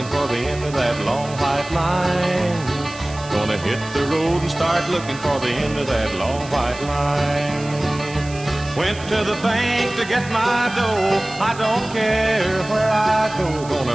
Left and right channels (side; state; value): right; noise; hiss, 17 dB below the sound